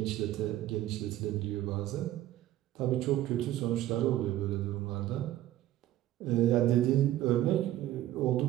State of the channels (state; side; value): quieter; left; 13.8 dB